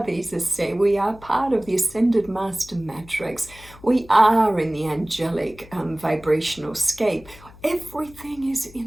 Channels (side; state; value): left; noise; hum, 21 dB below the sound